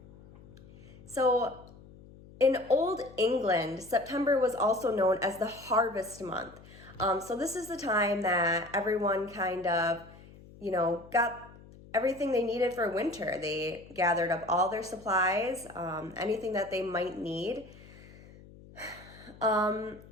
So in Old England, September was also known as the harvest month. So this is the time that everyone kind of, got everything they needed for winter. They gathered up all their supplies, anything that they might need.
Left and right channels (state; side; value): noise; left; hum, 21 dB below the sound